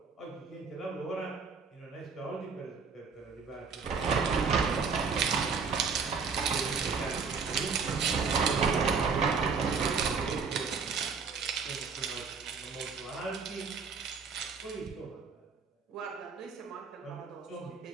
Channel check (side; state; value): left; quieter; 5.3 dB